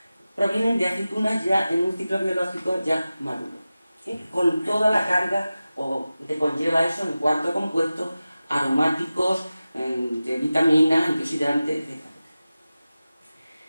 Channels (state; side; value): inverted; both; correlation -0.95